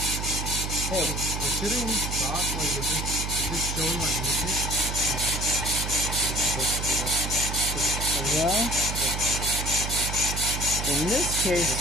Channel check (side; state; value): right; noise; hum, 4 dB below the sound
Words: Hey, considering we stop, like, is this showing like movement? Well, in this case,